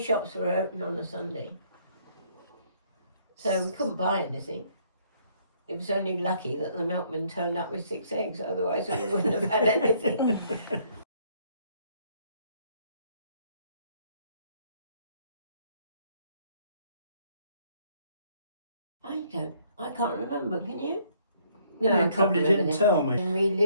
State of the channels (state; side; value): inverted; both; correlation -0.65